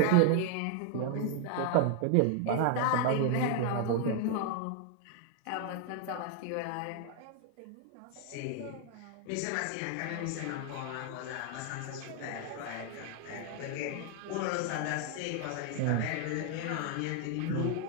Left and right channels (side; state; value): both; different; correlation 0.00